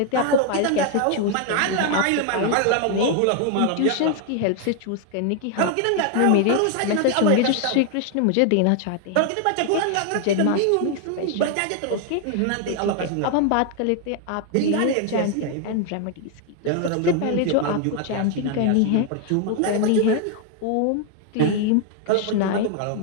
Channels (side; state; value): both; different; correlation 0.00